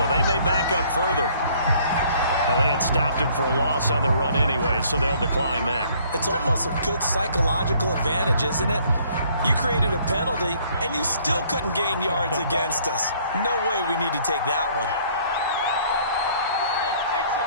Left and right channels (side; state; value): both; inverted; correlation -0.60